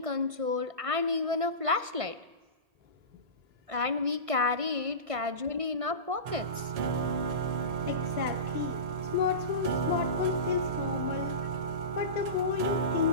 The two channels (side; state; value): left; late; 1.5 ms